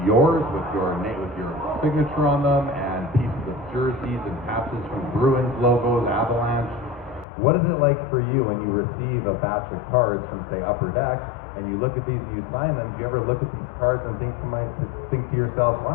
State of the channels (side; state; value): right; drops out; at 7.2 s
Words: yours with your name, with your signature on them, and pieces of jerseys and patches from Bruins logos, Avalanche. What is it like for you when you receive a batch of cards from, say, Upper Deck, and you look at these and you sign them? Do you ever look at these cards and think to yourself,